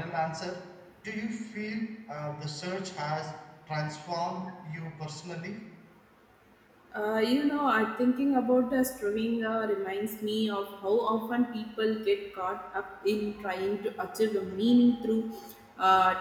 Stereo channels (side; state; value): both; identical; correlation 1.00